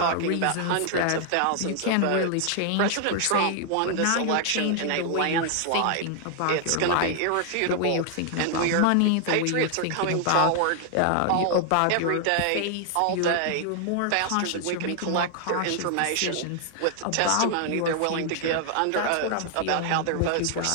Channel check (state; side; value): different; both; correlation 0.00